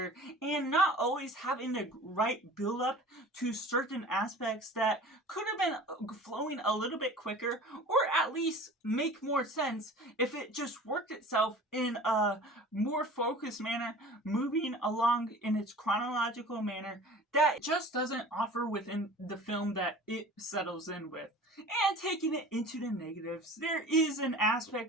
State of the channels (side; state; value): both; normal; correlation 0.41